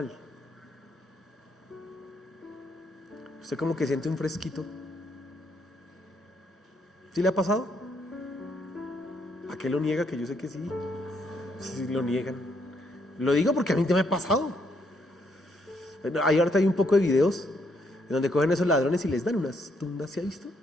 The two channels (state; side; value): normal; both; correlation 0.73